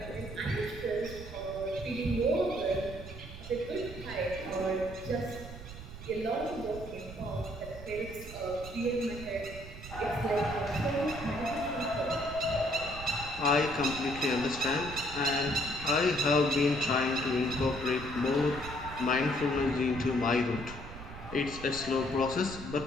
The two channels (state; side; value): noise; right; rumble, 12 dB below the sound